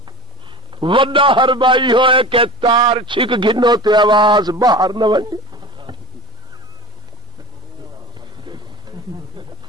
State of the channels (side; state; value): both; normal; correlation 0.35